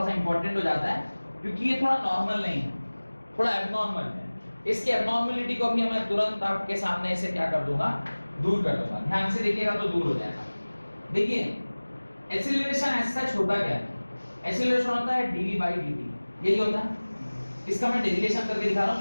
सा इंपॉर्टेंट हो जाता है क्योंकि ये थोड़ा नॉर्मल नहीं है, थोड़ा एबनॉर्मल है। इसके एबनॉर्मलिटी को भी मैं तुरंत आपके सामने से क्या कर दूंगा, दूर कर दूंगा। ध्यान से देखिएगा तो दूर हो जाएगा। देखिए, एक्सीलरेशन ऐसा होता क्या है, एक्सीलरेशन होता है dv by dt, यही होता है। इसका मैं डेरिवेशन करके दिखा रहा हूं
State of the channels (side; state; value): both; inverted; correlation -1.00